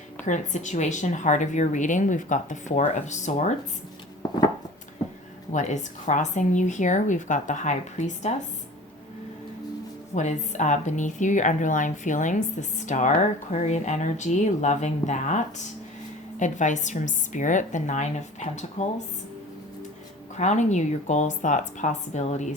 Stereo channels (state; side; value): normal; both; correlation 0.42